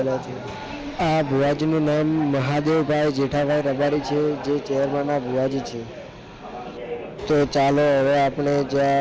છે। આ ભુવાજીનું નામ મહાદેવભાઈ જેઠાભાઈ રબારી છે, જે ચેરમાના ભુવાજી છે। તો ચાલો હવે આપણે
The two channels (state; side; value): identical; both; correlation 1.00